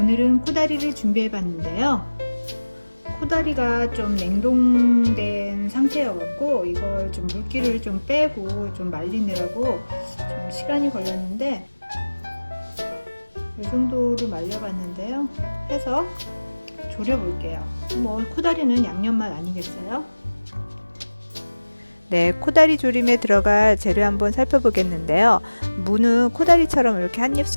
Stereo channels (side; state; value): both; inverted; correlation -1.00